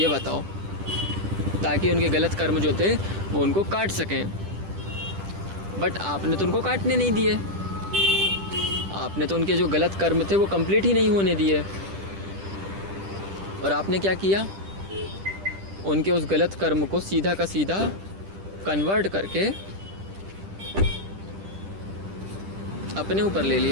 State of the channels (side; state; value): left; late; 10 ms